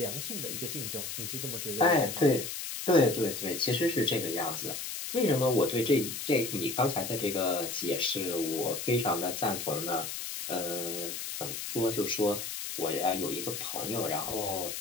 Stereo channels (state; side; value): noise; left; hiss, 6 dB below the sound